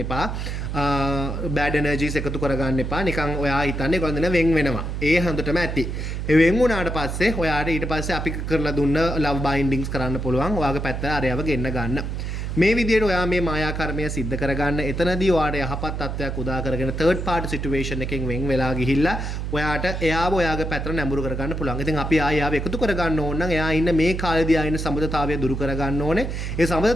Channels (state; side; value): noise; right; hum, 4 dB below the sound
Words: එපා. බෑඩ් එනර්ජීස් එකතු කරගන්න එපා. නිකන් ඔයා හිතන්නේ ගොඩන වෙන් වෙනවා. ඒ හොඳටම ඇති. ඒ වෙන් වුණාට පස්සේ ඔයාට ඊට පස්සේ අපි කරලා දුන්න ලව් බයින්ඩින්ග්ස් කරන්න පුළුවන්. ඔයාගේ පැත්තට අරයව ගෙන්න ගන්න. මේ විදිහට ඔයා මේ මායා කර්මය සිද්ධ කරගන්න. එතනදී ඔයාට යහපත් තත්ත්වයක් උදා කරගෙන third party situation එකෙන් වෙන් වෙලා ගිහිල්ලා ඔයාට එයාව ඔයාගේ පැත්තට නැඹුරු කරගන්න පුළුවන්. ඉතින් අපි ආයෙ එකතු කරගන්න ඕන නම් එයා ඉන්න මේ කාලේදී ආ ඉන්න සම්බන්ධතාවය දුරු කරගන්න ඕනේ. ඒ